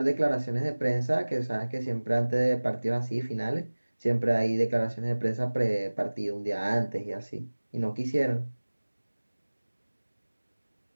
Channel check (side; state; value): both; inverted; correlation -1.00